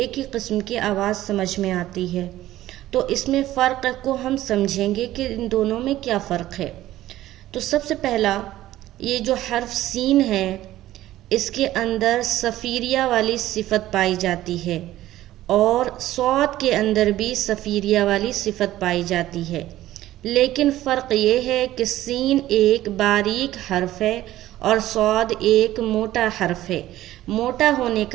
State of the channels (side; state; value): left; quieter; 14.6 dB